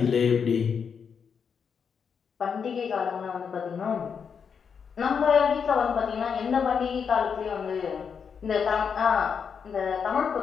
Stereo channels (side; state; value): right; quieter; 6.6 dB